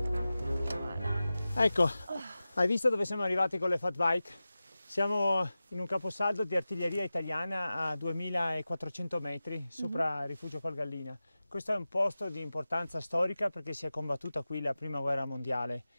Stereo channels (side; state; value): both; inverted; correlation -0.95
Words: Ecco, hai visto dove siamo arrivati con le fat bike? Siamo in un caposaldo di artiglieria italiana a 2400 metri sopra Rifugio Colgallina. Questo è un posto di importanza storica perché si è combattuta qui la prima guerra mondiale.